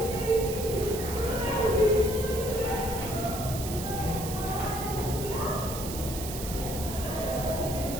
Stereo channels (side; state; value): right; noise; hiss, 8 dB below the sound